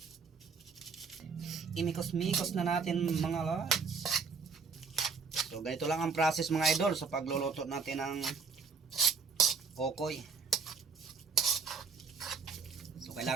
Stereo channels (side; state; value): left; quieter; 5.3 dB